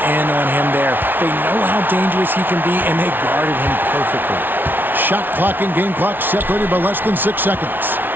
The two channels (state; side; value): late; left; 0.095 ms